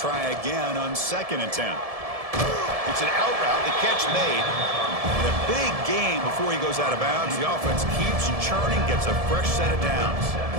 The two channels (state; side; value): late; left; 1.7 ms